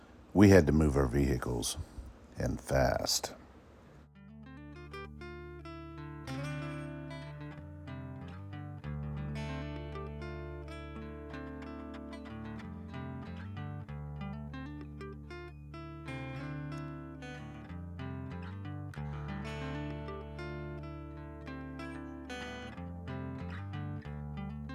We had to move our vehicles, and fast.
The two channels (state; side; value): identical; both; correlation 1.00